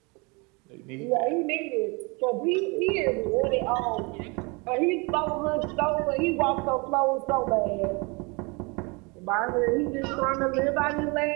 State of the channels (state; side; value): quieter; left; 29.2 dB